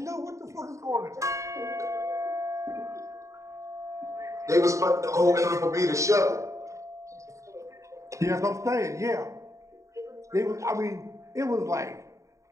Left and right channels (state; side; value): late; left; 0.15 ms